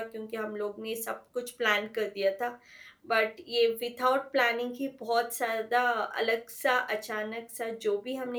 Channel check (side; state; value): both; identical; correlation 1.00